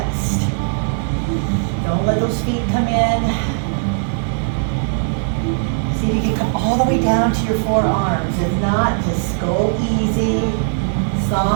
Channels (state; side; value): silent; left; digital silence